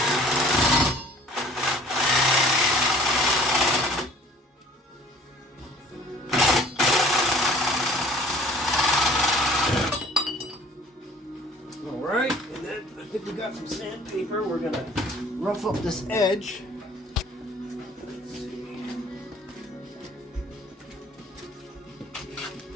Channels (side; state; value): both; normal; correlation 0.51